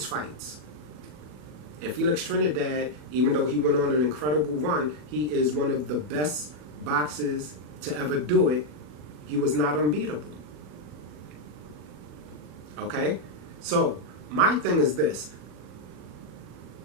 fights. And Felix Trinidad, even though he went on an incredible run, he is one of the best boxers to ever do it. He was not unbeatable. Okay? So, my thing is this.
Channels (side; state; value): left; late; 40 ms